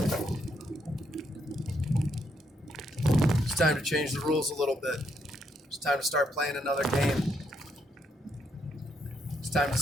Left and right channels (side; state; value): both; normal; correlation 0.76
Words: It's time to change the rules a little bit. It's time to start playing another game. It's time to